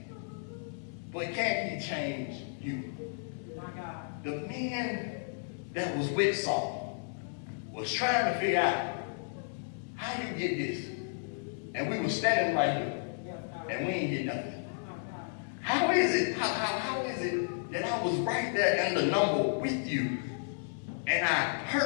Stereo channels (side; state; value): right; silent; digital silence